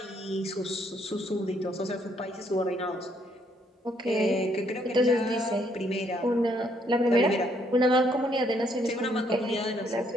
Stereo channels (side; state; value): both; normal; correlation 0.70